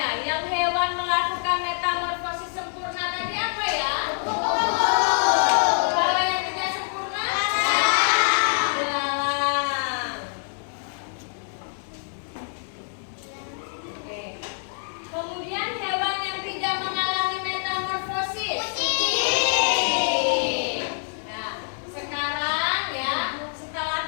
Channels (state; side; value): silent; right; digital silence